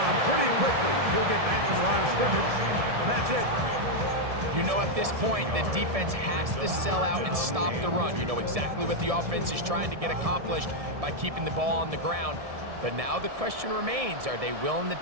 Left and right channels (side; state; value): left; late; 1.7 ms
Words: pretty quickly. He'll get back to the line of scrimmage, and that's it. You know, at this point, the defense has to sell out and stop the run. You know exactly what the offense is trying to get accomplished by keeping the ball on the ground. But now the question remains, are they willing to